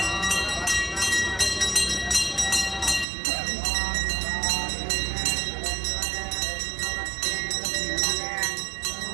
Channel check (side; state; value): left; drops out; at 3.1 s